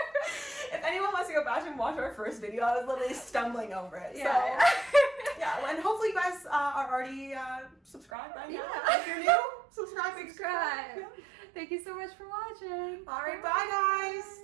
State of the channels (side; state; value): left; drops out; at 8.1 s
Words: If anyone wants to go back and watch our first video, I was literally stumbling over it. Yeah. So, yeah, and hopefully you guys are already subscribed by now. If you're new, subscribe. Subscribe. Thank you so much for watching. All right, bye